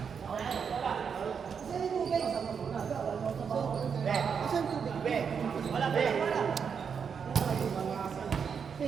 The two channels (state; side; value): quieter; left; 6.6 dB